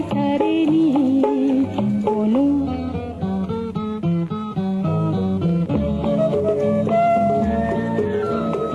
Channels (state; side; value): identical; both; correlation 1.00